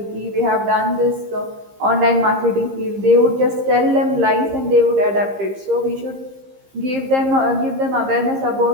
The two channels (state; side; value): late; left; 15 ms